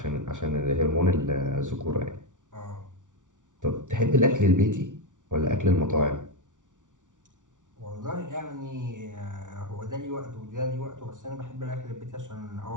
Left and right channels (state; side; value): late; left; 0.87 ms